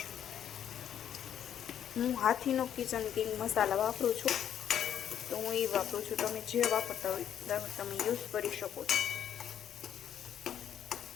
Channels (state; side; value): quieter; right; 9.7 dB